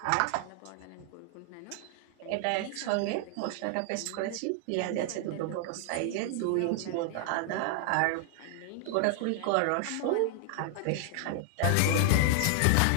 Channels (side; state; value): both; different; correlation 0.00